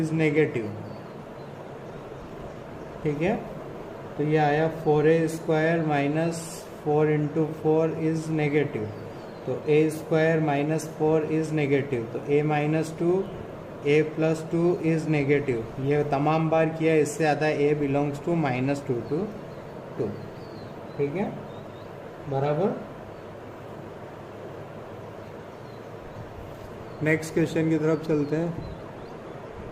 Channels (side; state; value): both; identical; correlation 1.00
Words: negative, ठीक है। तो ये आया 4a square minus 4 into 4 is negative, तो a square minus 4 is negative, तो a minus 2 a plus 2 is negative. ये तमाम बार किया, इससे आता है a belongs to minus 2 to 2, ठीक है, बराबर। नेक्स्ट क्वेश्चन की तरफ चलते हैं।